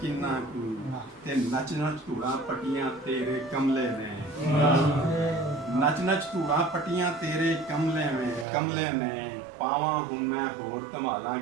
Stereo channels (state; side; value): drops out; left; at 8.5 s